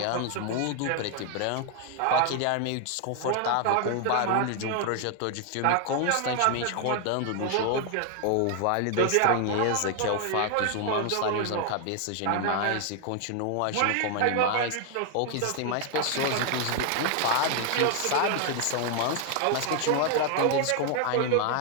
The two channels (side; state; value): both; different; correlation 0.00